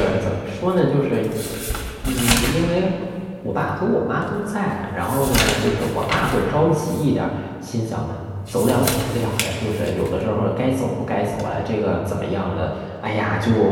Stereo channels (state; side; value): identical; both; correlation 1.00